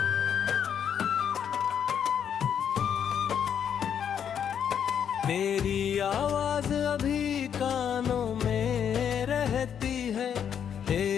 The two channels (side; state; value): right; quieter; 8.4 dB